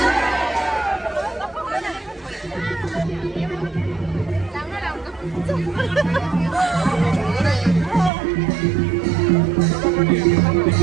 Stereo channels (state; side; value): drops out; left; at 8.1 s